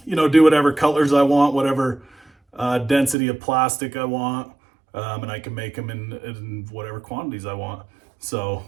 do whatever colors I want, whatever density of plastic I want, and I can make them in whatever quantities I want. So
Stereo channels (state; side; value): drops out; left; at 3.2 s